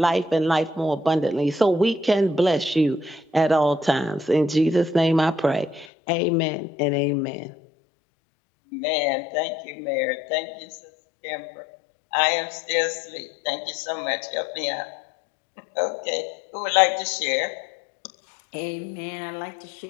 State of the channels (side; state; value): right; drops out; at 5.9 s